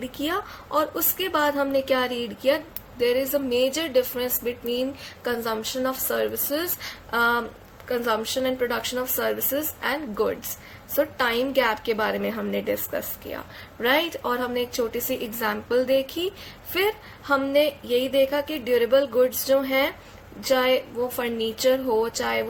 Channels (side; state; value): both; identical; correlation 1.00